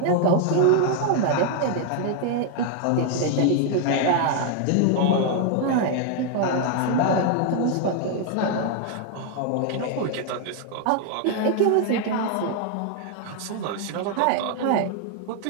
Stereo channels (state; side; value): different; both; correlation 0.00